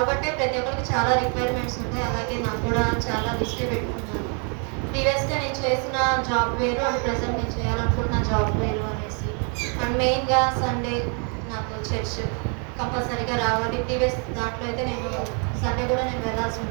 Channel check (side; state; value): left; quieter; 38.0 dB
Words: అంటే ప్రతి ఒక్కరికి చాలా రిక్వైర్మెంట్స్ ఉంటాయి. అలాగే నాకు కూడా చాలా లిస్టే పెట్టుకున్నాను. ప్రీవియస్‌గా నేను చేసిన జాబ్ వేరు అండ్ ప్రెజెంట్ నేను చేయాలనుకుంటున్న జాబ్ వేరు అనేసి. అండ్ మెయిన్‌గా సండే నాకు చర్చ్ కంపల్సరీగా రావాలి. ప్రీవియస్ దాంట్లో అయితే నేను సండే కూడా నేను వెళ్ళాల్సి